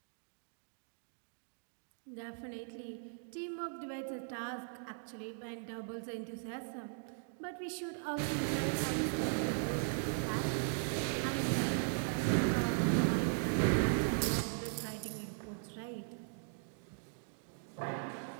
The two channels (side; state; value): left; silent; digital silence